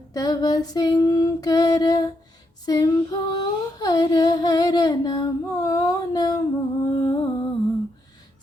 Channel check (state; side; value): normal; both; correlation 0.79